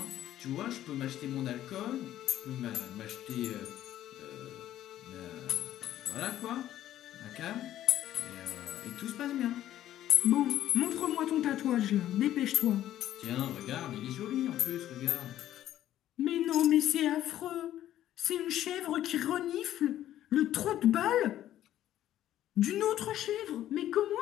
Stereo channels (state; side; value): quieter; right; 12.6 dB